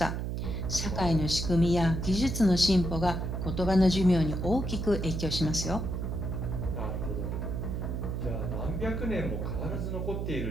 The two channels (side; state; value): right; noise; hum, 2 dB below the sound